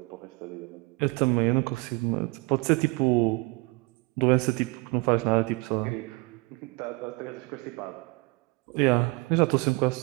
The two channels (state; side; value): quieter; left; 25.5 dB